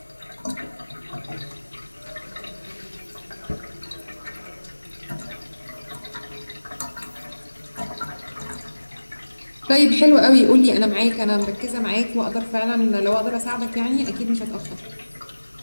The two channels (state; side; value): inverted; both; correlation -1.00